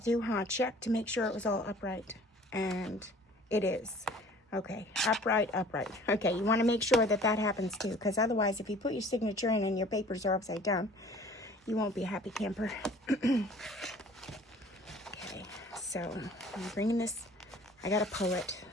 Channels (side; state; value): both; normal; correlation 0.50